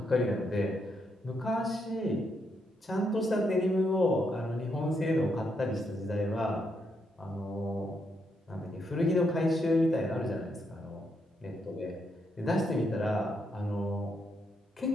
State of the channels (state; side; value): normal; both; correlation 0.79